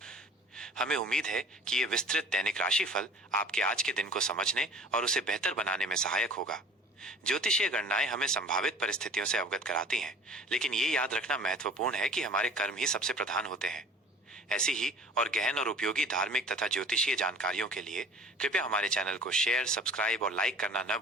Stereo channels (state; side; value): normal; both; correlation 0.46